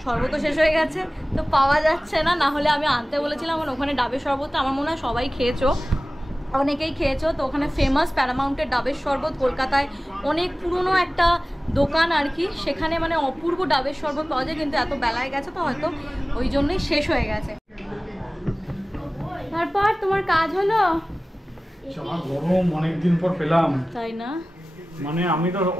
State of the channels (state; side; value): normal; both; correlation 0.97